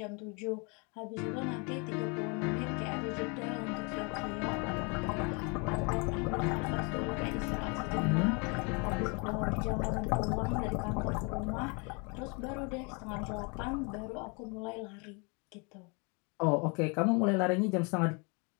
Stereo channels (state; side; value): quieter; right; 32.4 dB